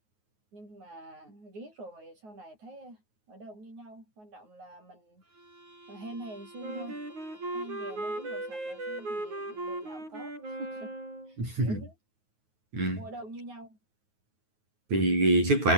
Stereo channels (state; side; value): late; left; 9.4 ms